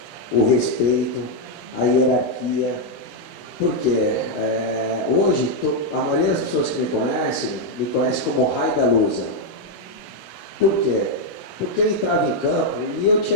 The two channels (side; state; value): both; normal; correlation 0.00